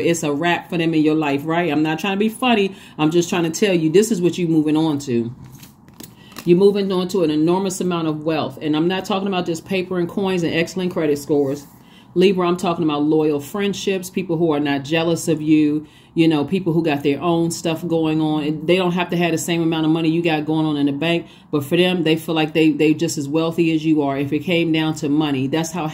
a wrap for them in your life, right? I'm not trying to be funny. I'm just trying to tell you, this is what you're moving on to. You're moving on to an enormous amount of wealth. And I'm not talking about just paper and coins and excellent credit scores. Libra, I'm talking about loyal friendships, people who are not jealous of you, people who got their own stuff going on. And they don't have to have the same amount of money you got going on in the bank. But for them, they feel like they just as wealthy as you are. If it came down to money, that's how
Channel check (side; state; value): both; identical; correlation 1.00